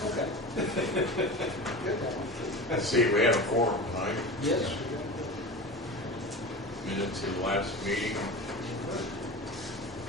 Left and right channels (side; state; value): both; normal; correlation 0.31